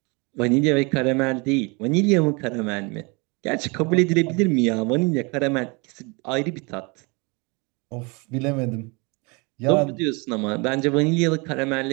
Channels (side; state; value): left; quieter; 29.2 dB